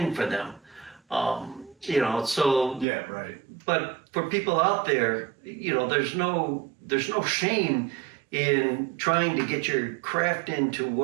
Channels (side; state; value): left; drops out; at 2.9 s